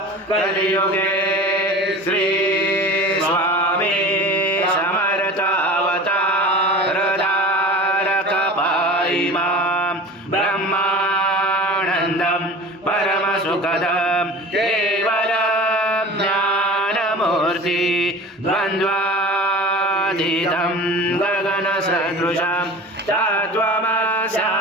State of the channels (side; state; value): both; normal; correlation 0.37